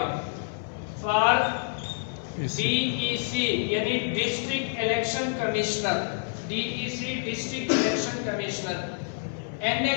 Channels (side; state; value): right; silent; 59 dB below the other